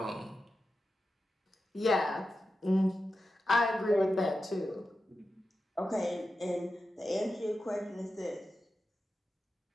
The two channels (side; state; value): both; normal; correlation 0.91